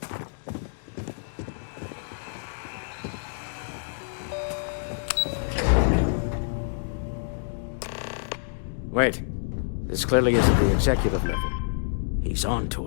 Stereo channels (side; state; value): right; silent; digital silence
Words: Wait. This clearly isn't the executive level. He's on to